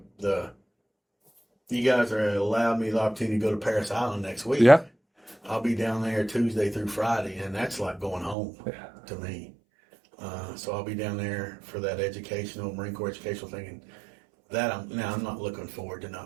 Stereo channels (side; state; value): left; drops out; at 8.3 s